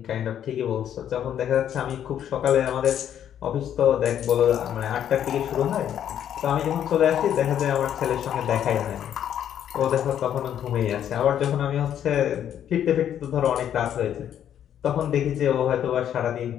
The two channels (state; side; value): quieter; right; 10.0 dB